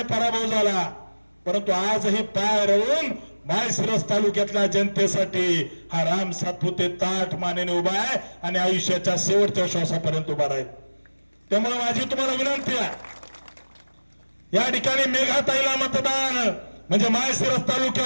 पराभव झाला, परंतु आजही पाय रोवून माळशिरस तालुक्यातल्या जनतेसाठी हा राम सातपुते ताठ मानेने उभा आहे आणि आयुष्याच्या शेवटच्या श्वासापर्यंत उभा राहील. त्यामुळे माझी तुम्हाला विनंती आहे, या ठिकाणी मेघाताईला मतदान म्हणजे माळशिरस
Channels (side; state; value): both; inverted; correlation -1.00